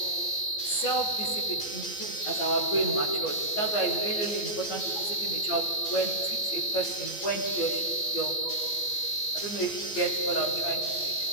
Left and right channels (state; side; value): late; right; 14 ms